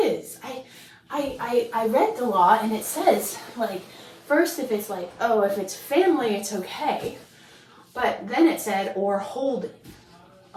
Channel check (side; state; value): both; identical; correlation 1.00